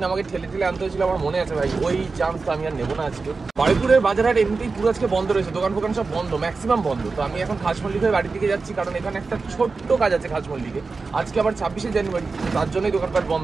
আমাকে ঠেলে ঠেলে আনতে হয়েছিল, আমার মনে আছে ভাই। ওই চান্স তো আমি আর নেবো না আজকে। বারুইপুরের বাজারহাট এমনিতেই পুরো আজকে বন্ধ রয়েছে, দোকান ফোকান সব বন্ধ, ম্যাক্সিমাম বন্ধ। তো আমি এখন খাসমল্লিক হয়ে বাড়ির দিকে যাচ্ছি, কারণ এখানে একটা ছোট্ট কাজ আছে খাসমল্লিকে। আজকে আবার 26শে জানুয়ারি, তার জন্যই দোকানপাট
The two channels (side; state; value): left; quieter; 4.2 dB